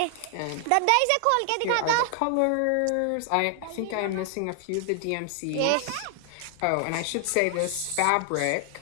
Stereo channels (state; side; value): different; both; correlation 0.00